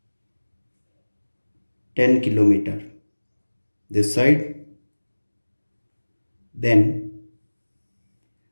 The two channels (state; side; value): inverted; both; correlation -1.00